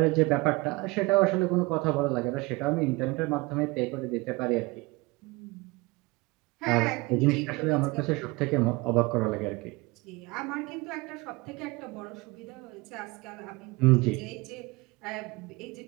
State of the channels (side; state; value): left; quieter; 23.8 dB